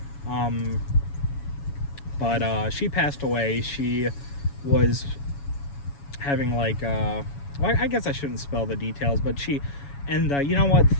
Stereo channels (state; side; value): late; right; 7.1 ms